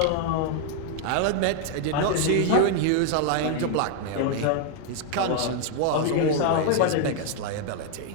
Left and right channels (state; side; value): different; both; correlation 0.00